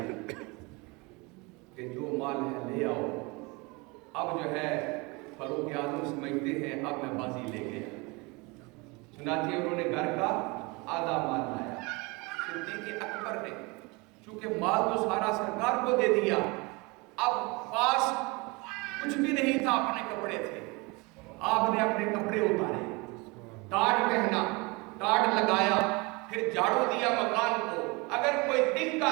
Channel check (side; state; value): left; quieter; 26.7 dB